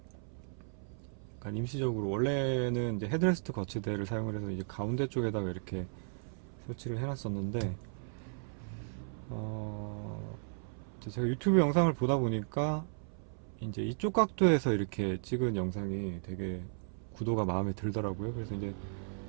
약간 임시적으로, 원래는 이제 헤드레스트 거치대를 사용을 해서 이제 가운데 쪽에다가 이렇게 설치를 해놨었는데, 제가 유튜브 영상을 보다 보니까 이제 이쪽 각도에서 이렇게 찍은 영상이 되게 구도가 마음에 들더라고요. 그래서 이제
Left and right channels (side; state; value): left; silent; 54 dB below the other